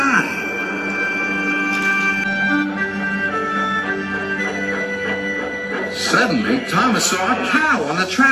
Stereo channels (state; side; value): identical; both; correlation 1.00